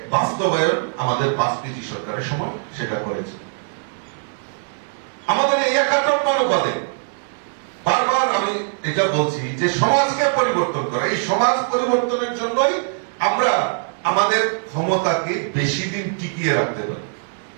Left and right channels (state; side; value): silent; left; digital silence